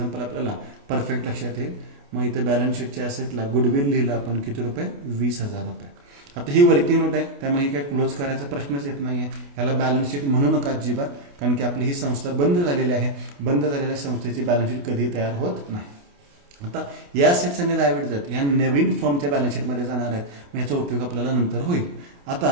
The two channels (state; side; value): late; left; 28 ms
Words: आपल्याला परफेक्ट लक्षात येईल. मग इथे बॅलन्स शीटच्या ॲसेटला गुडविल लिहिलं आपण किती रुपये 20,000 रुपये. आता ही वर्किंग नोट आहे त्यामुळे ही काय क्लोज करायचा प्रश्नच येत नाहीये. याला बॅलन्स शीट म्हणू नका अजिबात कारण की आपली ही संस्था बंद झालेली आहे. बंद झालेल्या संस्थेची बॅलन्स शीट कधी तयार होत नाही. आता या असेट्स आणि लायबिलिटीज या नवीन फर्मच्या बॅलन्स शीटमध्ये जाणार आहेत. मग याचा उपयोग आपल्याला नंतर होईल.